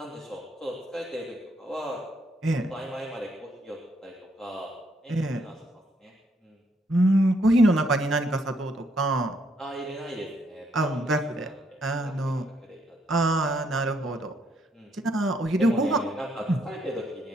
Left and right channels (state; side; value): normal; both; correlation 0.72